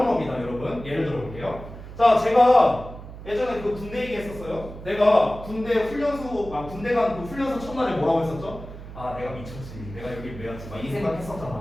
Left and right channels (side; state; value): right; noise; hum, 13 dB below the sound